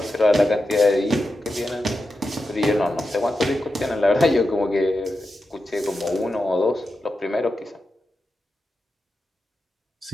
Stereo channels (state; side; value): normal; both; correlation 0.90